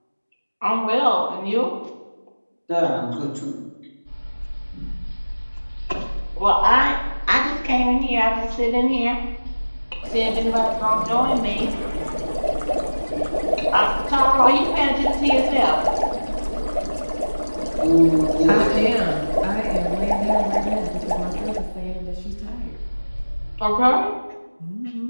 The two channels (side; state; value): both; inverted; correlation -1.00